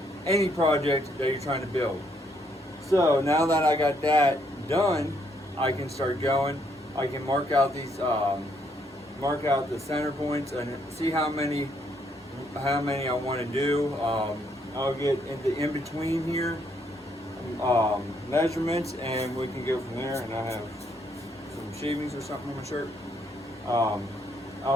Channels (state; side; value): normal; both; correlation 0.72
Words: any project that you're trying to build. So now that I got that done, I can start going. I can mark out these, mark out the center points and see how many I want to do. I'll get in between here measurements, and we can go from there. And I have some shavings or something on my shirt.